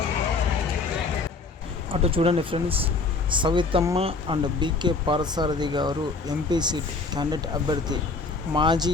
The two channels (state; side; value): quieter; right; 4.0 dB